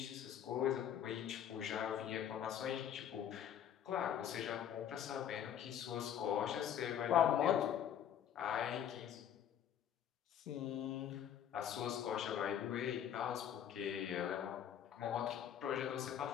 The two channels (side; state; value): right; quieter; 9.6 dB